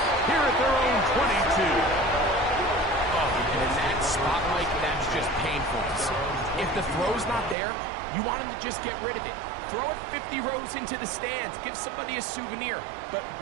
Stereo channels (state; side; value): drops out; left; at 7.6 s